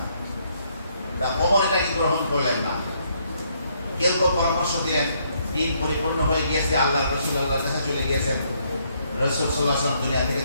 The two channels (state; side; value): inverted; both; correlation -0.71